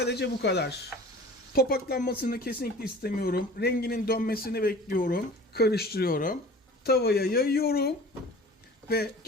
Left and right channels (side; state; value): both; normal; correlation 0.43